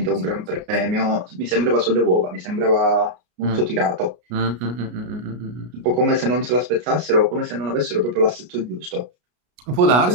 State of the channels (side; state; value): left; late; 33 ms